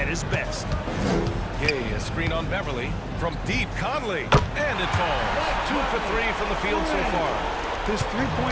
his best. Gay, a screen on Beverly. From deep, Conley. And it falls. 2 for 3 from the field so far. His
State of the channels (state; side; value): identical; both; correlation 1.00